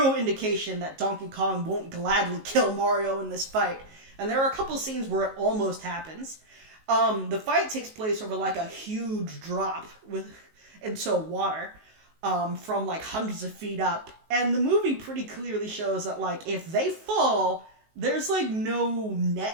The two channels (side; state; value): left; late; 19 ms